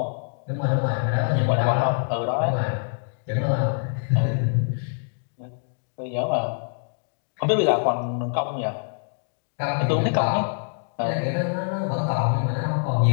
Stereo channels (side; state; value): right; silent; digital silence